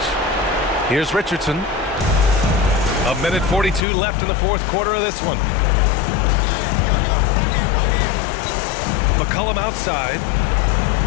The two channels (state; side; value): drops out; right; at 3.8 s